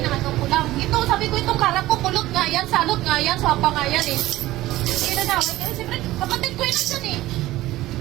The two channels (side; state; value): left; quieter; 16.6 dB